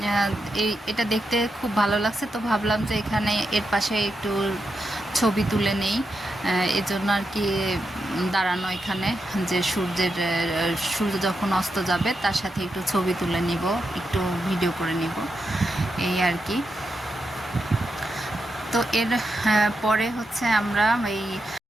এটা দেখতে খুব ভালো লাগছে। তো ভাবলাম যে এখানে এর পাশে একটু ছবি তুলে নেই, এজন্য আর কি দাঁড়ানো এখানে, যে সূর্য যখন অস্ত যাবে তার সাথে একটু ছবি তুলে নিব, একটু ভিডিও করে নিব, এই আর কি। তো এর পরে হচ্ছে আমরা এই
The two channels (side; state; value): both; normal; correlation 0.86